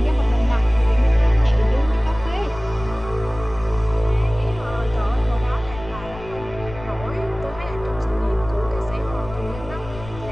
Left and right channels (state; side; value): noise; left; rumble, 15 dB below the sound